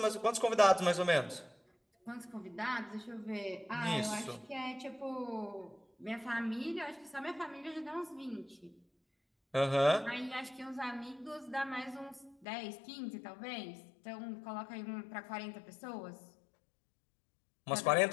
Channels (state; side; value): drops out; right; at 12.5 s